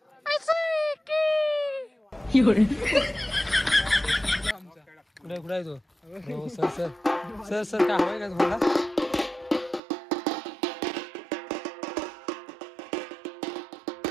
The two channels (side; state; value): left; drops out; at 9.8 s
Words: कुठे आहे तो? हो सर सर सर सर काय हवंय का तुम्हाला?